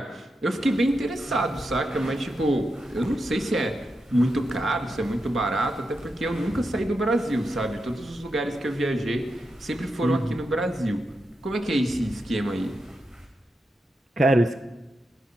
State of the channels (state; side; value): normal; both; correlation 0.87